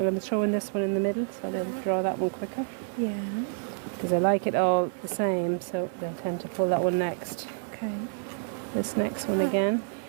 going to throw in this one in the middle so they'll draw that one quicker. Yeah. Because I like it all the same, so they'll tend to pull that one next. Okay. This next one again.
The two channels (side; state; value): left; silent; digital silence